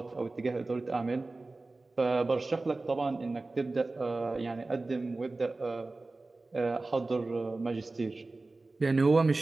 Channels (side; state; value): left; quieter; 3.3 dB